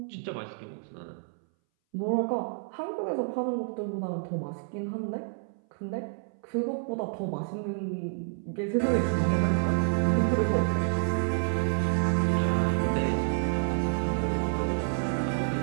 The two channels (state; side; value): silent; left; 59 dB below the other